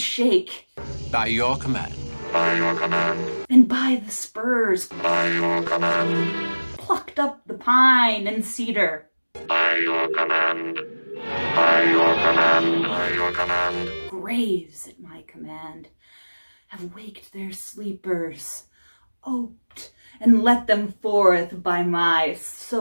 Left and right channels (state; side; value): inverted; both; correlation -1.00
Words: By your command. By your command. And by the spurs. By your command. Plucked up the pine and cedar. By your command. By your command. By your command. Graves at my command have waked their sleepers, oped and let them forth by my